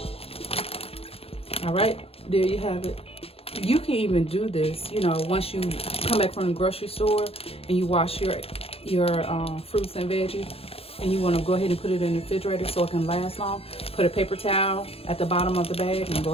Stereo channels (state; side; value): late; right; 0.28 ms